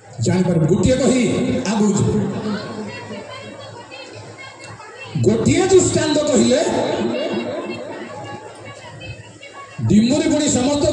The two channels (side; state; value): both; identical; correlation 1.00